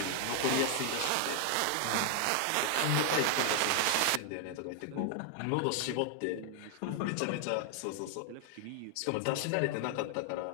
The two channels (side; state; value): both; different; correlation 0.00